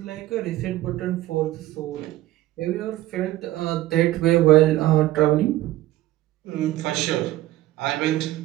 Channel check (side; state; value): left; quieter; 16.0 dB